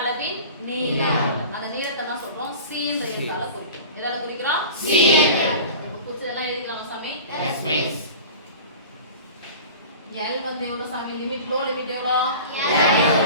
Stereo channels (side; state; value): both; inverted; correlation -0.38